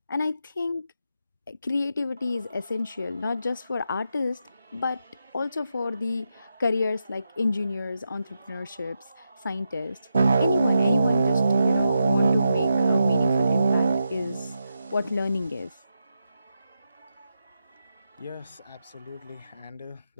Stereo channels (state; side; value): inverted; both; correlation -0.86